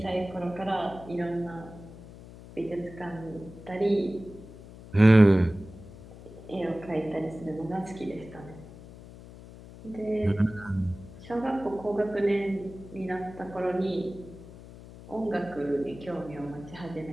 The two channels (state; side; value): noise; left; hum, 17 dB below the sound